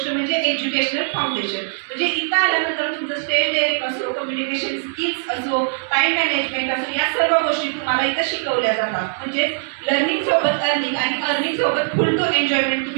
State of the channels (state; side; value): silent; left; digital silence